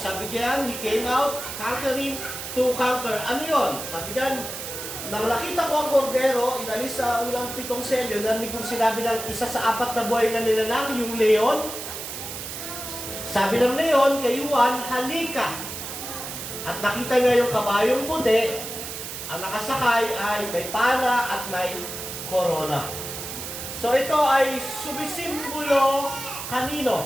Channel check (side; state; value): right; noise; hiss, 8 dB below the sound